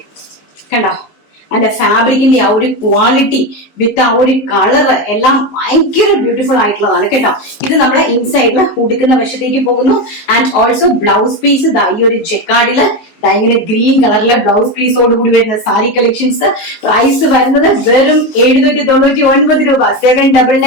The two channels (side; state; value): right; late; 19 ms